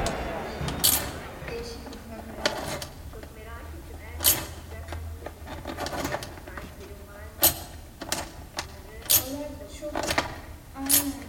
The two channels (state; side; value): identical; both; correlation 1.00